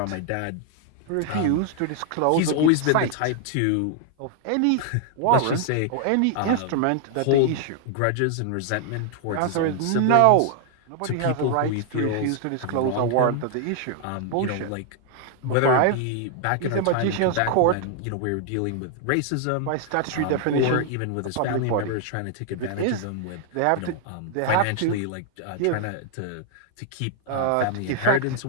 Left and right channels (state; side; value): different; both; correlation 0.00